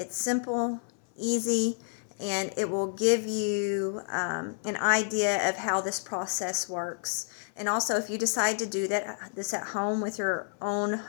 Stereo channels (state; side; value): silent; right; 58 dB below the other